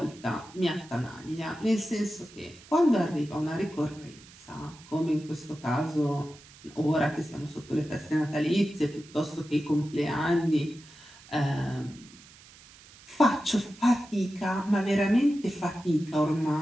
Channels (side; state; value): right; noise; hiss, 22 dB below the sound